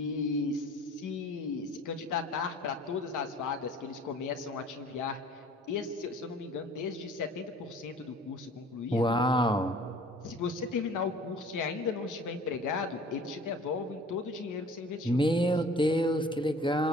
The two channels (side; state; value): both; normal; correlation 0.48